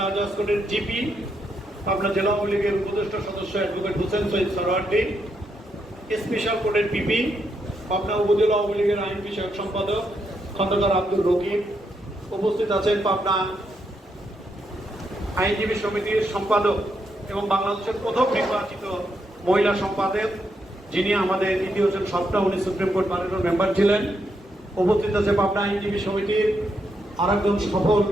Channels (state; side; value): normal; both; correlation 0.80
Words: আজাদ কোর্টের জিপি, পাবনা জেলা আওয়ামী লীগের উপদেষ্টা সদস্য অ্যাডভোকেট হোসেন সৈয়দ সরওয়ার্দী, স্পেশাল কোর্টের পিপি, পাবনা উপজেলা আওয়ামী লীগের আইন বিষয়ক সম্পাদক খন্দকার আব্দুল রকিব। উপস্থিত আছেন পাবনা আইনজীবী সমিতির সম্পাদক এবং বাংলাদেশের প্রথম নির্বাচিত মহিলা সম্পাদক, যিনি আমাদের ইতিহাসের সবটা, উনি সুপ্রিম কোর্ট প্যানেলের মেম্বার ছিলেন। উপস্থিত আছে পাবনা আইনজীবী সমিতির আরেকজন সফল